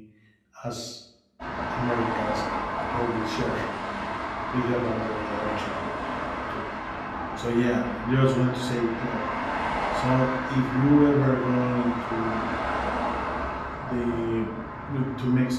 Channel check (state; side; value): identical; both; correlation 1.00